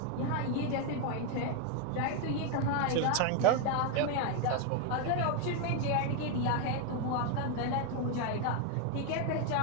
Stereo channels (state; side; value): different; both; correlation 0.01